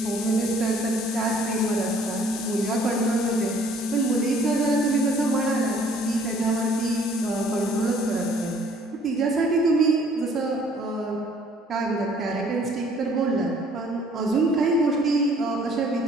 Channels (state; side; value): normal; both; correlation 0.58